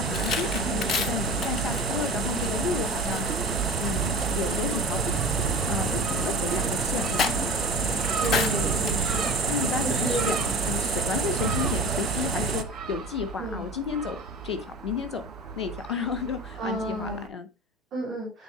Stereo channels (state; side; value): normal; both; correlation 0.35